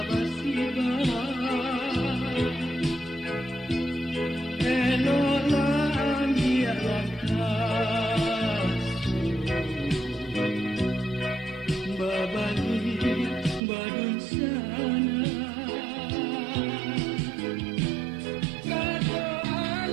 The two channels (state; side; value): drops out; left; at 13.6 s